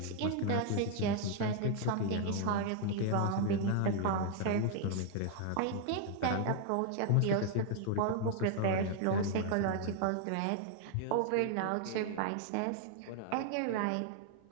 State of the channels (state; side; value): different; both; correlation 0.00